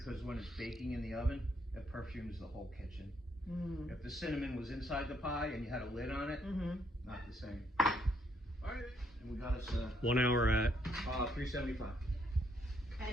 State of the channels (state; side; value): normal; both; correlation 0.71